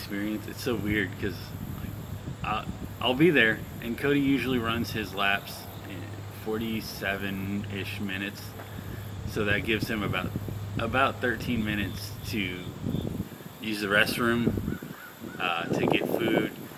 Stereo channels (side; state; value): both; identical; correlation 1.00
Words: It's so weird because I'll be there, and Cody usually runs his laps in 47-ish minutes, so that gives him about 13 minutes to use the restroom, to get food,